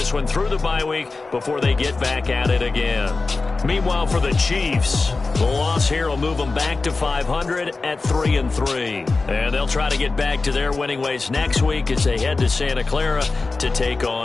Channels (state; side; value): quieter; right; 3.8 dB